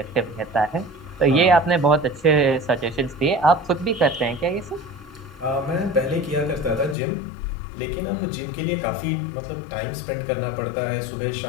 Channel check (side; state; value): right; drops out; at 7.0 s